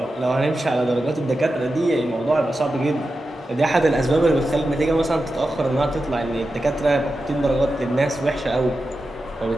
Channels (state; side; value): normal; both; correlation 0.91